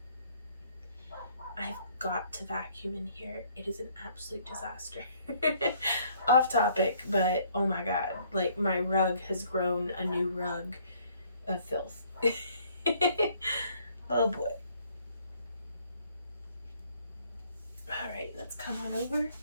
I've got to vacuum in here. It is an absolute disaster. Off topic, but oh my god, like my rug has grown a new rug of filth. Oh boy. Alright, let's come on over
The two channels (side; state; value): both; inverted; correlation -0.63